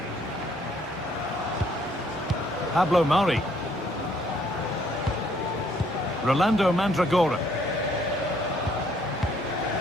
Pablo Mari. Rolando Mandragora.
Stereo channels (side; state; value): both; normal; correlation 0.66